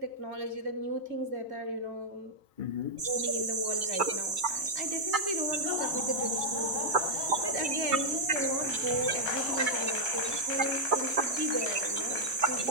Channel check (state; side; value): late; left; 2.3 ms